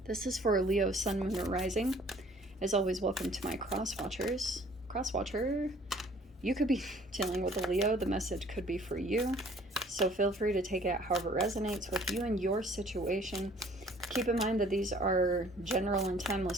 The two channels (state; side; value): normal; both; correlation 0.56